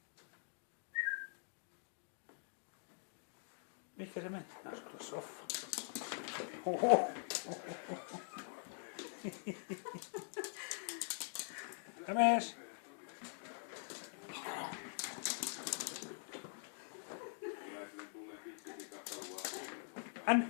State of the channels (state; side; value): silent; right; digital silence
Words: Mihinkä se meni? Asuu tuossa soffaan. Oho. Jämes?